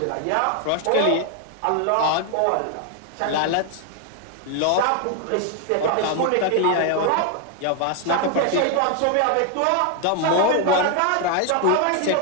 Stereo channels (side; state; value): both; different; correlation 0.01